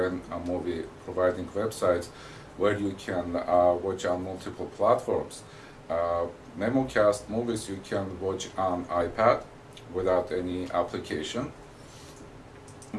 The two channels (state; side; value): identical; both; correlation 1.00